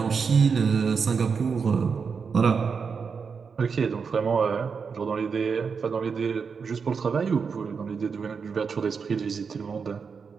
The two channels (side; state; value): left; quieter; 5.7 dB